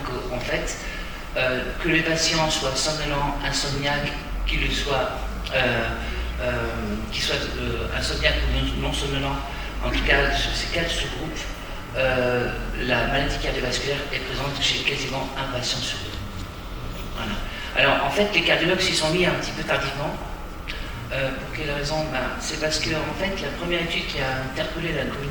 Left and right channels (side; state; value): both; identical; correlation 1.00